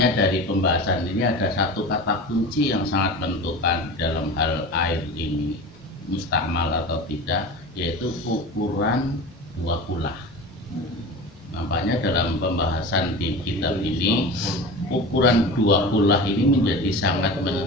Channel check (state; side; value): normal; both; correlation 0.32